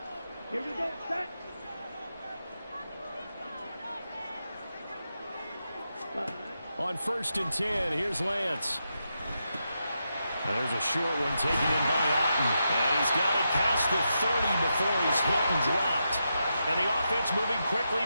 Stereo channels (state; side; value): inverted; both; correlation -0.86